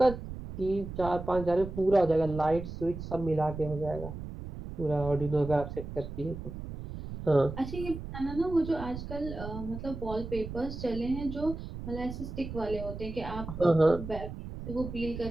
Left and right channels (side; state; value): right; noise; rumble, 9 dB below the sound